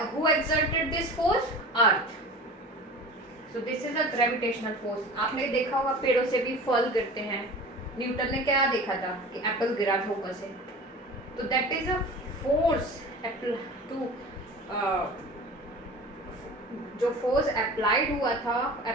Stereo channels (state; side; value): normal; both; correlation 0.37